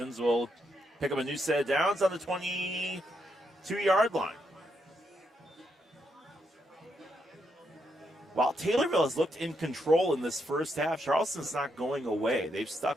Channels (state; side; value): normal; both; correlation 0.79